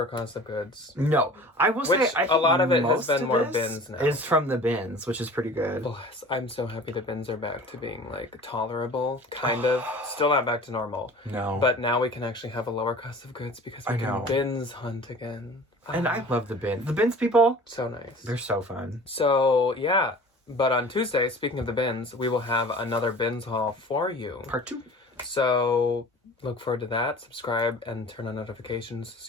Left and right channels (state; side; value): normal; both; correlation 0.43